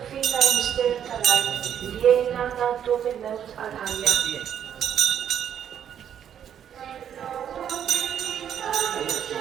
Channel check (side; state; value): left; quieter; 9.2 dB